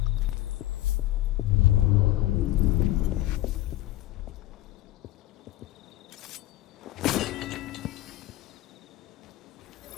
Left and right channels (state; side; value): quieter; right; 15.6 dB